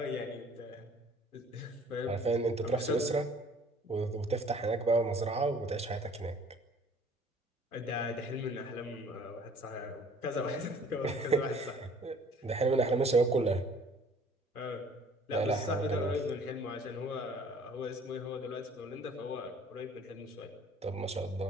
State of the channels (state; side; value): normal; both; correlation 0.54